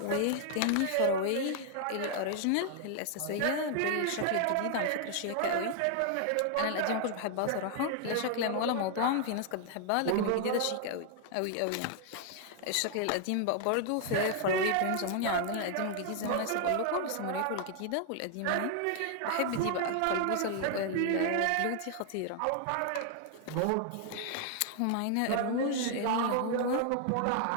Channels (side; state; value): both; different; correlation 0.00